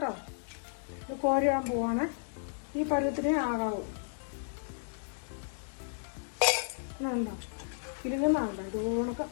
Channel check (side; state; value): right; silent; digital silence